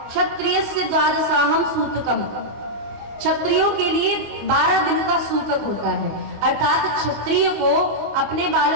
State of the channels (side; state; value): left; late; 25 ms